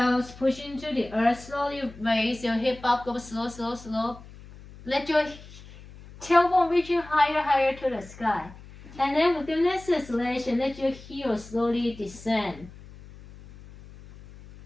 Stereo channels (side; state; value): left; noise; hum, 19 dB below the sound